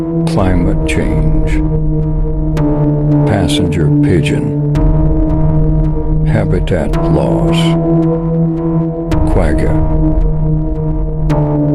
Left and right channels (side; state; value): both; identical; correlation 1.00